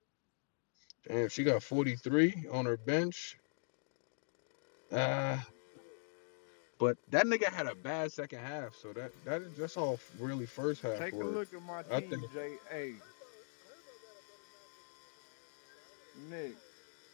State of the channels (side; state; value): right; silent; digital silence